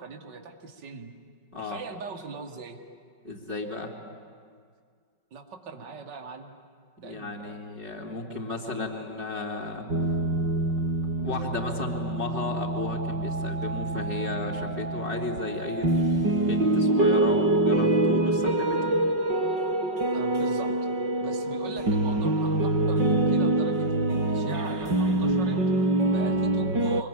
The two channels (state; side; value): late; left; 5.3 ms